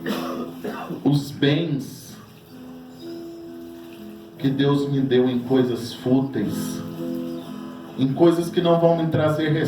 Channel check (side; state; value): both; identical; correlation 1.00